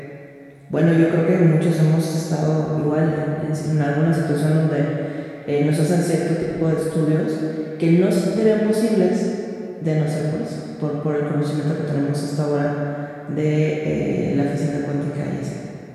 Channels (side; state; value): both; identical; correlation 1.00